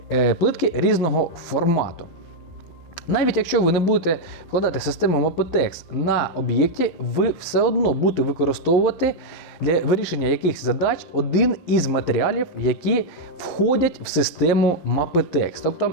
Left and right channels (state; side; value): late; right; 11 ms